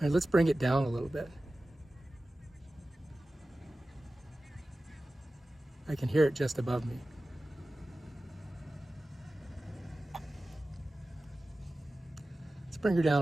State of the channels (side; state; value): both; normal; correlation 0.96